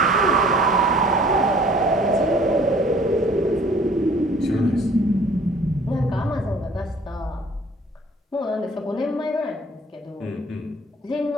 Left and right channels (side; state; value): both; normal; correlation 0.53